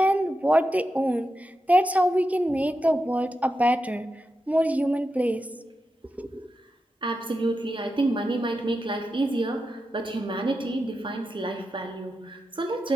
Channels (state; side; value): normal; both; correlation 0.89